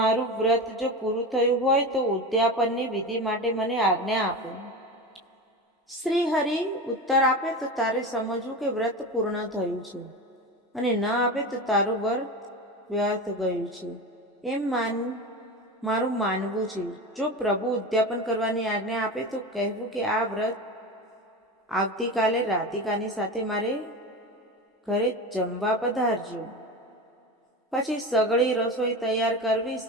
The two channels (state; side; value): normal; both; correlation 0.26